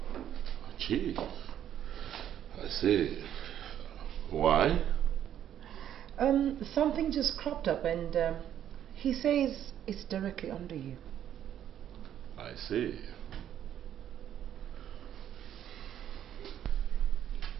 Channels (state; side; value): quieter; left; 10.5 dB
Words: Chief? I see. Why? Something just cropped up and he says it's directly under you. I see.